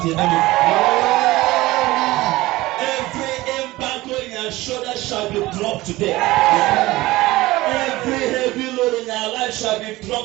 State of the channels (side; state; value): left; quieter; 18.8 dB